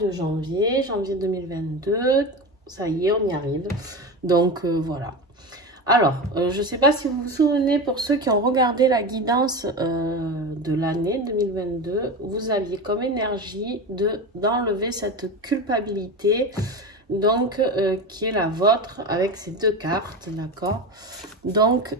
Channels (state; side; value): normal; both; correlation 0.24